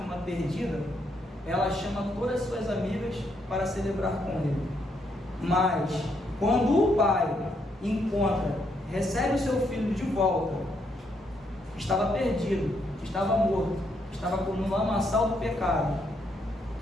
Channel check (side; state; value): both; normal; correlation 0.75